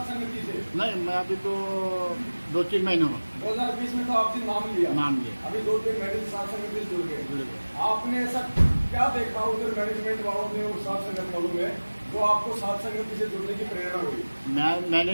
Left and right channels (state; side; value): inverted; both; correlation -1.00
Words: संगति से? नहीं, मैं अभी तो 2-3 महीने हुआ 2020 में तो आपने नाम लिया। नाम लिया। अभी 2-3 महीने से सात संगति से जुड़ गए। आपने ऐसा क्या देखा उधर मैनेजमेंट वालों ने और सात संगत वालों में जो आपको सात संगति से जुड़ने की प्रेरणा हुई?